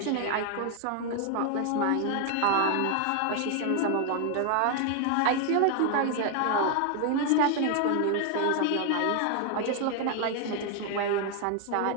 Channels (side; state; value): both; different; correlation 0.00